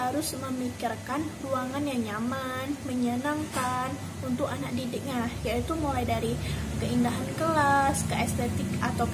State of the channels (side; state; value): both; identical; correlation 1.00